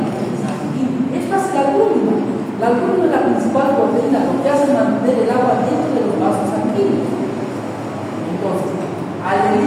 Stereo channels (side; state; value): both; identical; correlation 1.00